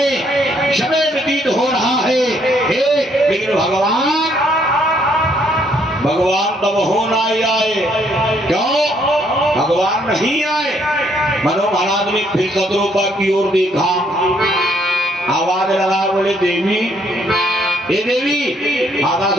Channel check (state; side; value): normal; both; correlation 0.68